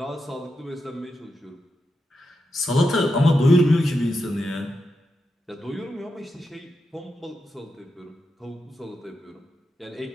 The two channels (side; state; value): both; normal; correlation 0.87